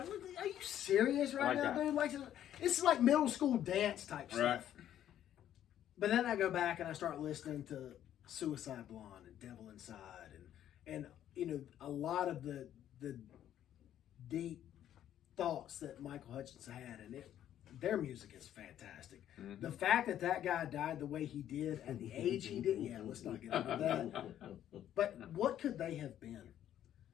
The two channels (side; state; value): right; quieter; 11.1 dB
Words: are you serious right like now, that. dude? Like, this is like middle school dance type Right. stuff. But then I go back and I start listening to Suicide Blonde and Devil Inside and you know, a lot of the deep thoughts that Michael Hutchence had, and their music is fantastic. Mm-hmm. The fact that guy died the way he did at the age he did, yeah, let's not get into that. But what could they have been?